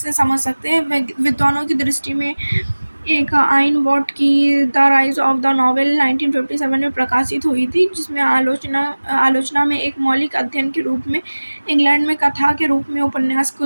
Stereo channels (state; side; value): inverted; both; correlation -1.00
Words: समझ सकते हैं। विद्वानों की दृष्टि में एक आइन वॉट की the rise of the novel 1957 में प्रकाशित हुई थी, जिसमें आलोचना में एक मौलिक अध्ययन के रूप में इंग्लैंड में कथा के रूप में उपन्यास की